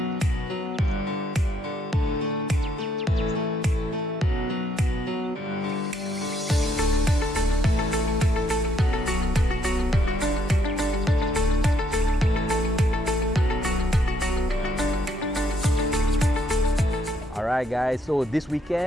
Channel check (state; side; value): normal; both; correlation 0.71